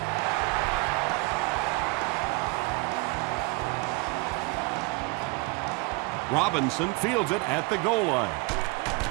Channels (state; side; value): quieter; left; 26.0 dB